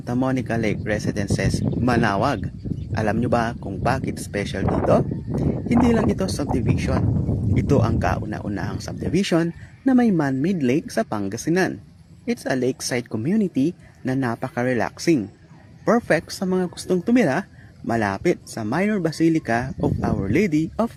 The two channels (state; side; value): identical; both; correlation 1.00